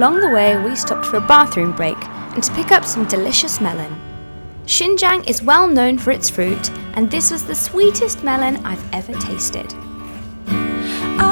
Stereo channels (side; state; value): both; inverted; correlation -1.00